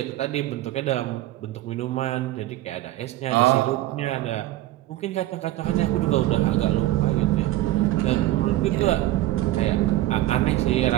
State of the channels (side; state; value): left; quieter; 15.4 dB